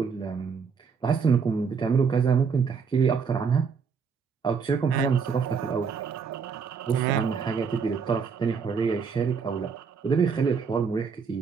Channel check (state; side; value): quieter; left; 5.9 dB